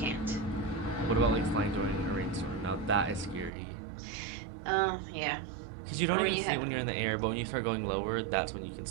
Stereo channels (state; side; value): drops out; left; at 3.5 s